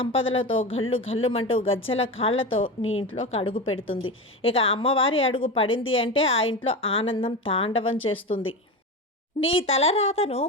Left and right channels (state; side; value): normal; both; correlation 0.22